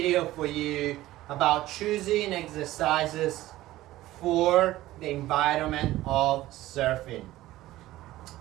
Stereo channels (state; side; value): quieter; left; 16.0 dB